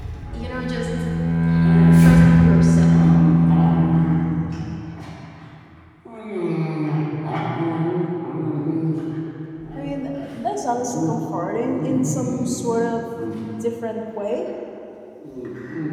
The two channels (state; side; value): identical; both; correlation 1.00